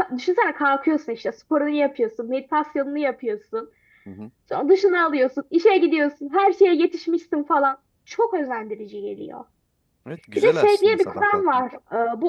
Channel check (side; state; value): both; identical; correlation 1.00